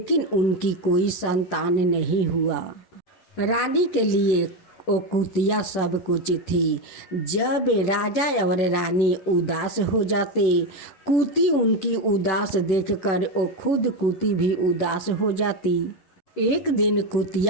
उनकी कोई संतान नहीं हुआ। रानी के लिए वो कुतिया सब कुछ थी। जब राजा और रानी उदास हो जाते, कुती उनकी उदास देखकर वो खुद कुती भी उदास हो जाती। एक दिन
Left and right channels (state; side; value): late; right; 10 ms